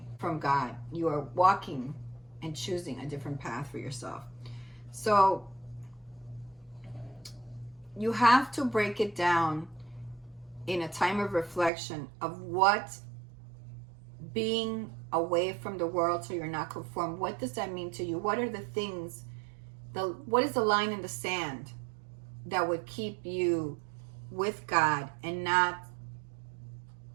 from God. You are walking and choosing a different path for yourself. So you have to break it down in a time of reflection of what being away from the world so you're not conformed, what does that mean to you? What are the things, what is the line in the sand that would keep you with God and not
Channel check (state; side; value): drops out; left; at 11.7 s